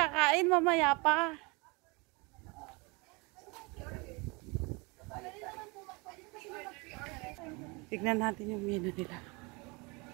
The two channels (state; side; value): quieter; left; 28.0 dB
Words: mamaya pa. Tignan natin yung menu nila.